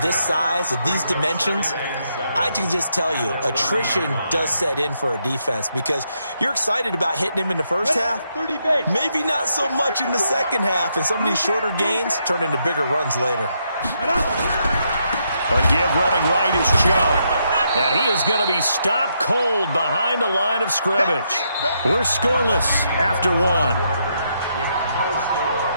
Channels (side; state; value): both; inverted; correlation -0.78